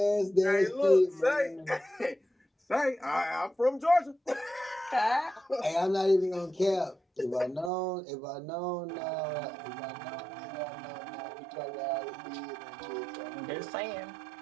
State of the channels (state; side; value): drops out; left; at 7.7 s